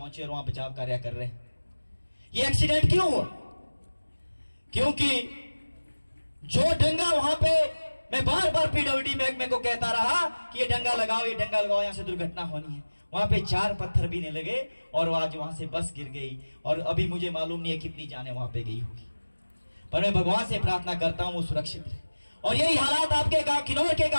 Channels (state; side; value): inverted; both; correlation -1.00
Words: और वहां बचाव कार्य कर रहे हैं। ये एक्सीडेंट क्यों हुआ? क्योंकि जो डंगा वहां पे, मैं बार बार पीडब्ल्यूडी महकमे को कहता रहा कि ये डंगा लगाओ, ये डंगा लगाओ, यहाँ से दुर्घटना होनी है। वहां पे 4 पत्थर भी नहीं लगे और आज वहां से बस गिर गई। और अभी मुझे मालूम नहीं है कितनी जाने वहां पे गई होगी, पर मैं भगवान से प्रार्थना करता हूं वो सुरक्षित रहे। और यही हालात आपके गांव, किन्नौर के